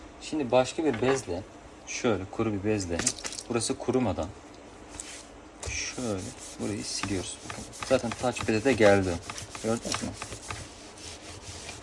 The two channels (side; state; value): both; identical; correlation 1.00